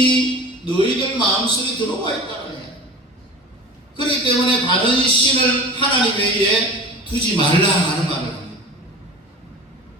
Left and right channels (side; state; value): both; normal; correlation 0.36